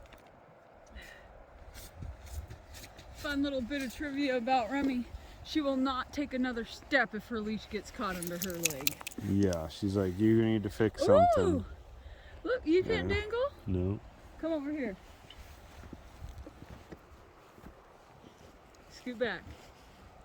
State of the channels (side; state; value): both; identical; correlation 1.00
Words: Fun little bit of trivia about Remy. She will not take another step if her leash gets caught under her leg. Yeah, she's like, you need to fix something. Ooh! Look, you can't Yeah. dangle? No. Come over here. Scoot back.